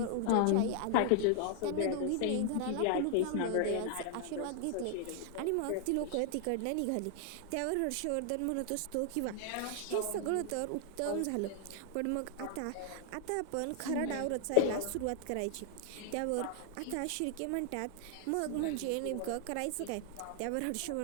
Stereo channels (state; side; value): different; both; correlation 0.00